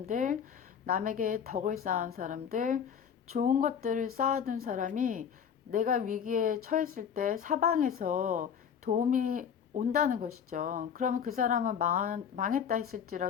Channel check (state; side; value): quieter; right; 7.7 dB